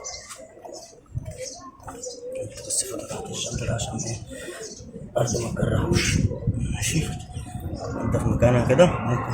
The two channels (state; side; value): identical; both; correlation 1.00